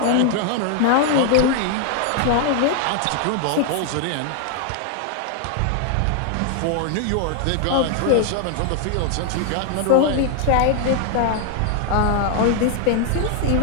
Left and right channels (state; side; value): different; both; correlation 0.00